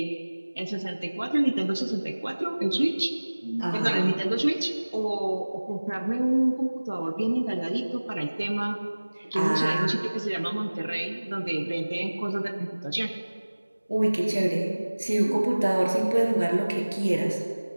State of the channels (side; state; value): both; inverted; correlation -1.00